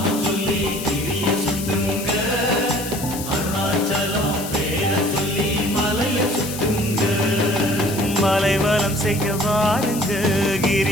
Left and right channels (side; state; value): left; noise; hiss, 9 dB below the sound